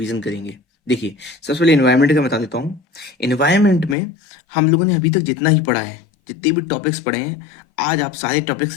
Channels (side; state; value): right; drops out; at 4.0 s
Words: करेंगे। देखिए, सबसे पहले इन्वायरमेंट का बता देता हूँ। इन्वायरमेंट में हम लोगों ने अभी तक जितना ही पढ़ा है, जितने भी टॉपिक्स पढ़े हैं, आज आप सारे टॉपिक्स